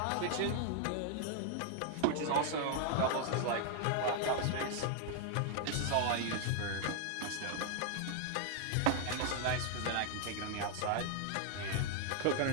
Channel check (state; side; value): different; both; correlation 0.00